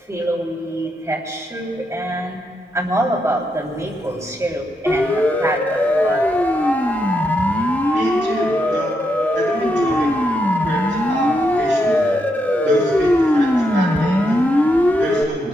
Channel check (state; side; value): normal; both; correlation 0.81